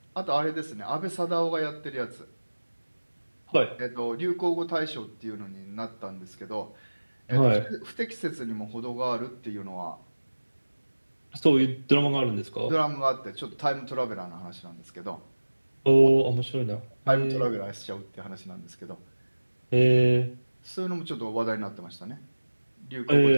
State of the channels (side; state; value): both; inverted; correlation -1.00